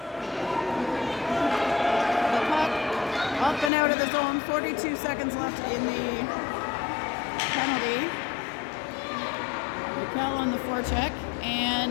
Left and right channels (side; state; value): right; drops out; at 3.7 s